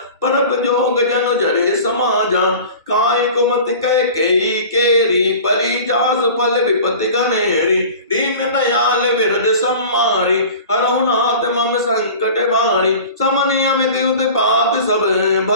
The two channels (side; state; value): both; inverted; correlation -0.39